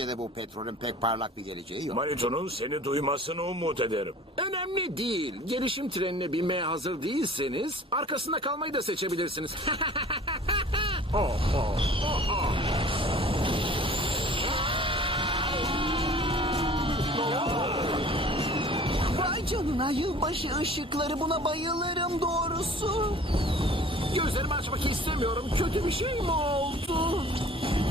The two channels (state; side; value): normal; both; correlation 0.47